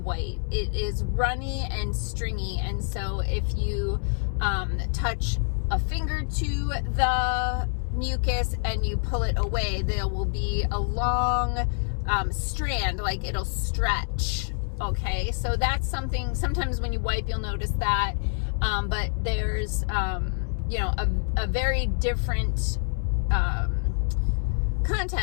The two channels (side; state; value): right; silent; 60 dB below the other